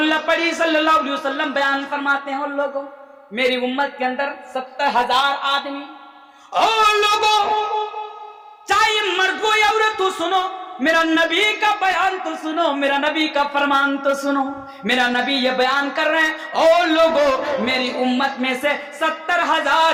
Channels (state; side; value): identical; both; correlation 1.00